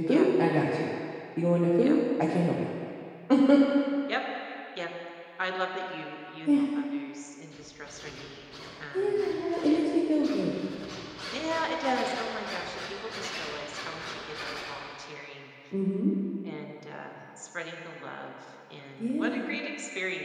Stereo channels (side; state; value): both; identical; correlation 1.00